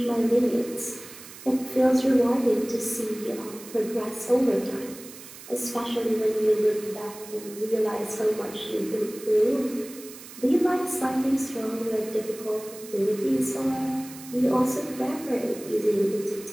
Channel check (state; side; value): noise; right; hiss, 16 dB below the sound